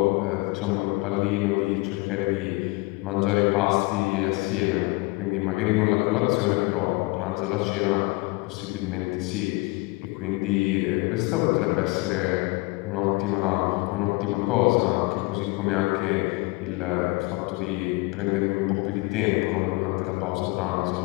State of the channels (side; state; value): right; quieter; 24.5 dB